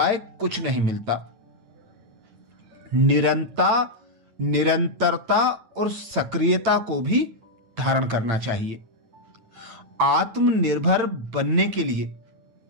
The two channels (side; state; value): left; late; 8.9 ms